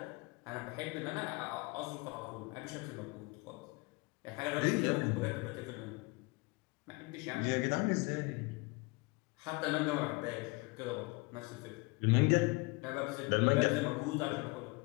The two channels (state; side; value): quieter; right; 26.4 dB